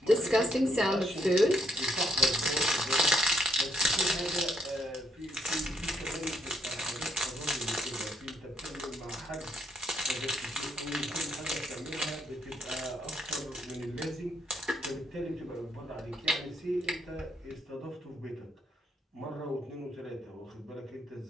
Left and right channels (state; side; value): normal; both; correlation 0.70